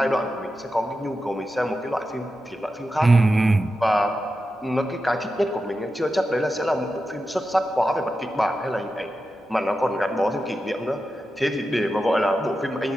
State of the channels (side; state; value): both; normal; correlation 0.90